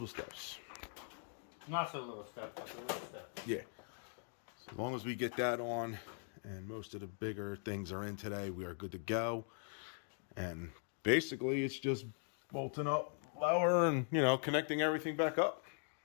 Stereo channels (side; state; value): right; silent; 51 dB below the other